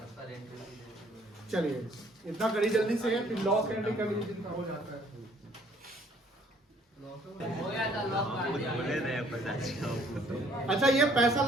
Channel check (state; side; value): normal; both; correlation 0.61